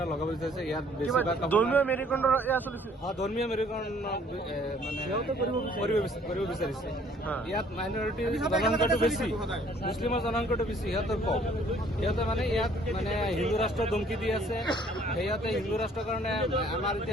লগাব বিচাৰিছে। ইয়াত ধৰ্মীয় মেৰুকৰণৰ ধৰ্মীয় মেৰুকৰণ মানে কৰিব বিচাৰিছে। ইয়াত মাইনৰিটি জনসংখ্যাটো বেছি, মুছলিমৰ জনসংখ্যাটো বেছি, সিহঁতৰ কম। সিহঁতে মানে ইয়াত মানে হিন্দু ৰাষ্ট্ৰ ধমকি দি আছে। সিহঁতে হিন্দু ৰাষ্ট্ৰৰ কাৰণে আমাৰ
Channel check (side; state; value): both; normal; correlation 0.59